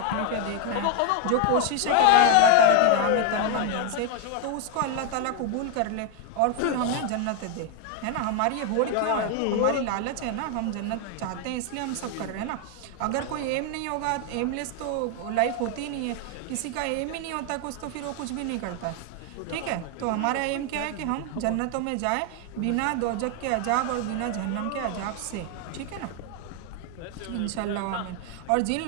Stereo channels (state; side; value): different; both; correlation 0.01